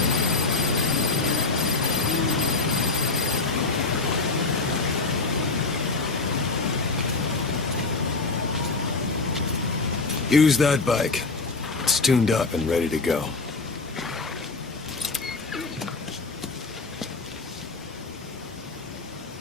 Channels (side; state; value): right; quieter; 3.8 dB